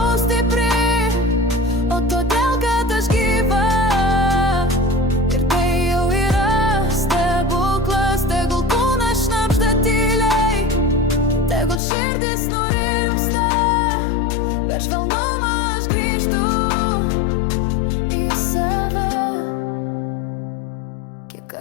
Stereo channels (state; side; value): drops out; right; at 11.8 s